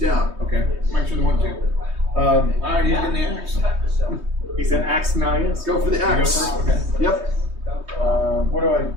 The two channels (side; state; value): left; late; 3.2 ms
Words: Okay. Make sure the one 2. Alright, he's getting the axe. He's an axe now, yes. Go for the You go axe. first? Okay. Yep. What do I?